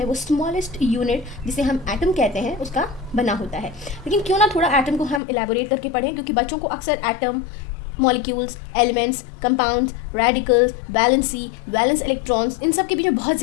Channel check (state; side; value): drops out; right; at 5.2 s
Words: वो स्मॉलेस्ट यूनिट जिसे हम एटम कहते हैं उसका बना होता है। लेकिन क्यों ना थोड़ा एटम को हम इलेबोरेट करके पढ़ें, क्योंकि बच्चों को अक्सर atom, molecules, elements, compounds, radicals, valence electrons, इन सब के बीच में बहुत